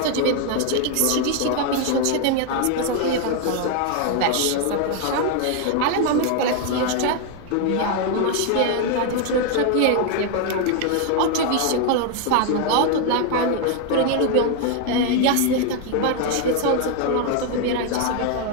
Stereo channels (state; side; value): different; both; correlation 0.01